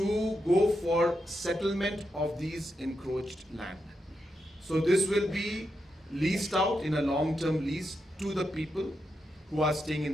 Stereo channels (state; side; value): normal; both; correlation 0.85